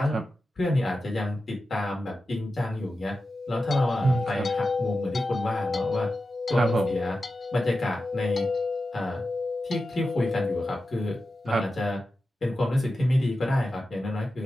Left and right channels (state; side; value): normal; both; correlation 0.92